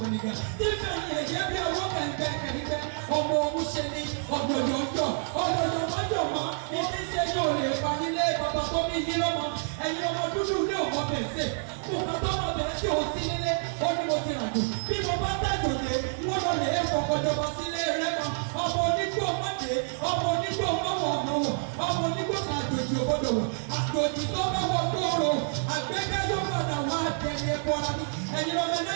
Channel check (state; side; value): silent; left; digital silence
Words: mọ̀nìkà tí fẹ̀yìn ẹ̀jẹ̀ bí owó kẹ̀kẹ́ ọmọ òwúṣe ni ọ̀dọ̀yọ̀yọ̀ mọ́jọ̀mọ́ ẹni iṣẹ́ yóò lè pa nílé bàbá tó bí yín lọ́mọ ẹ̀yin ọmọ dúdú ní òkò bẹ̀sẹ̀ kùkà tó mọ̀ bẹ̀rẹ̀ tí ò sí nílé ó ní mo ti ràjò bí mo bá tàjò lé wọ́n lọ lè fọkànjọba sílé rẹ̀ kan ọmọ onígbò mọ́dé ọmọ onígbò mọ́wọ́ ọ̀nàwọ̀ ọmọ onígbò kan àjòjì òbodò wọ̀ àjòjì tó mọ́wọ́ gbòòrò àgbẹ̀kẹ́ yóò padà wá àtẹ̀lé ẹ̀kọ́ ara ní ẹ̀yin ọmọ ẹ̀lẹ́